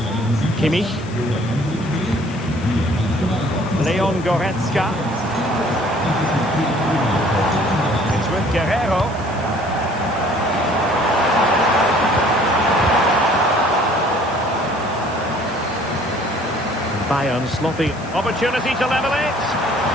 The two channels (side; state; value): left; noise; hiss, 22 dB below the sound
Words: Kimmich. Leon Goretzka. It's with Guerreiro. Bayern sloppy. Opportunity to level it.